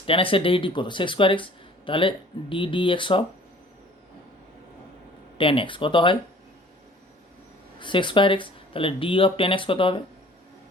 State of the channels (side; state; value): both; normal; correlation 0.50